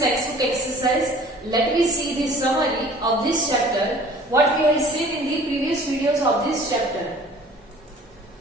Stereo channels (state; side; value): normal; both; correlation 0.49